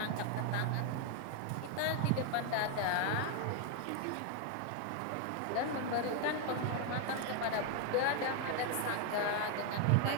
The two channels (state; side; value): different; both; correlation 0.01